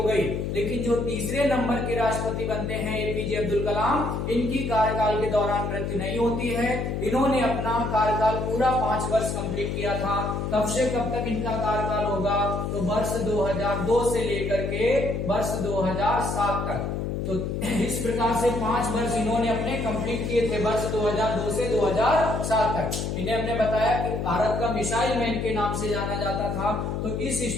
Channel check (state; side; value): noise; left; hum, 2 dB below the sound